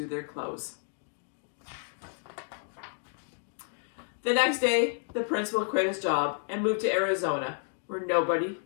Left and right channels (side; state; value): right; silent; digital silence